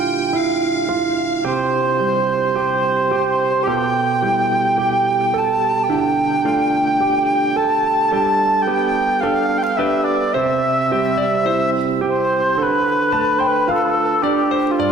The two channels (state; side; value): normal; both; correlation 0.64